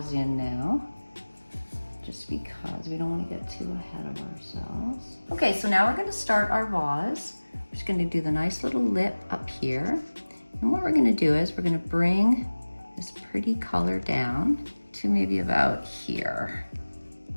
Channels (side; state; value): both; inverted; correlation -1.00